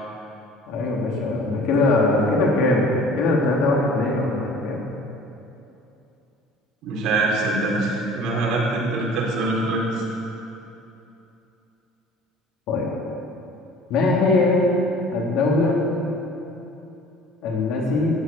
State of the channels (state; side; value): normal; both; correlation 0.48